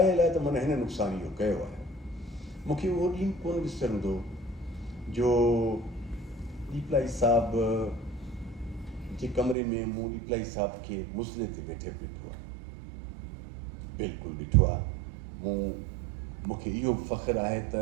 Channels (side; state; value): left; drops out; at 9.6 s